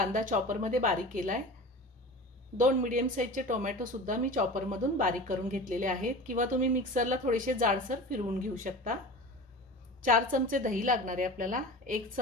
चॉपर मध्ये बारीक केलाय। 2 मीडियम साइजचे टोमॅटो सुद्धा मी चॉपर मधून बारीक करून घेतलेले आहेत किंवा तुम्ही मिक्सरला थोडेसे जाडसर फिरवून घेऊ शकता। 4 चमचे दही लागणार आहे आपल्याला, 1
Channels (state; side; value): normal; both; correlation 0.34